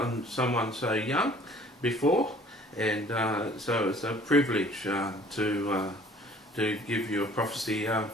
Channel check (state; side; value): normal; both; correlation 0.53